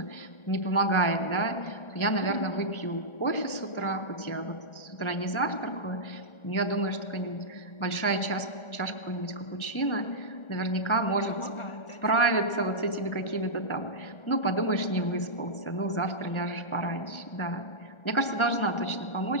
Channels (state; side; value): late; right; 1.4 ms